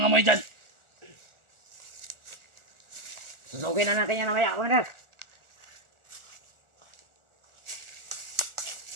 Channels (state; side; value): late; left; 1.4 ms